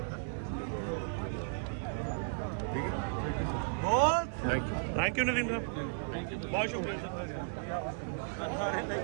थैंक यू नदीम साहब बहुत शुक्रिया सर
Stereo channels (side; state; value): left; silent; 55 dB below the other